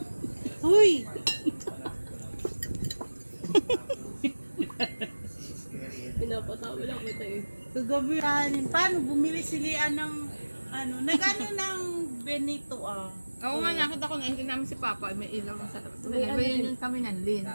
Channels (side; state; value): both; inverted; correlation -1.00